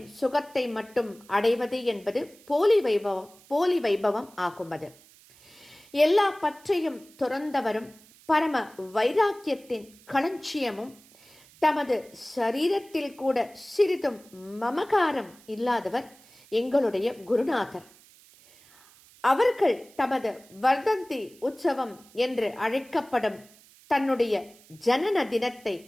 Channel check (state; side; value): noise; right; hiss, 26 dB below the sound